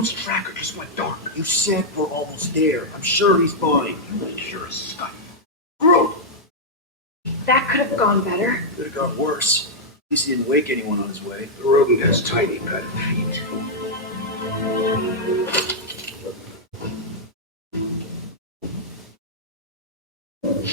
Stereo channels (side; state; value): both; normal; correlation -0.05